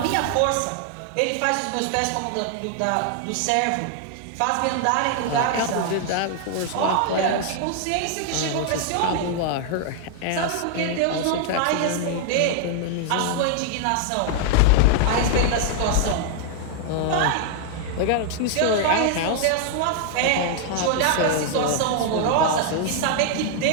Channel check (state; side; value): different; both; correlation 0.00